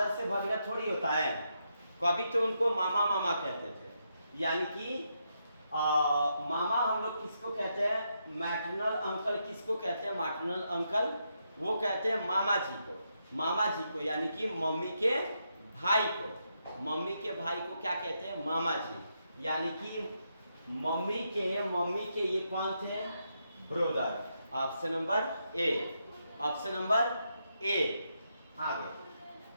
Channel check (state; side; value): inverted; both; correlation -0.81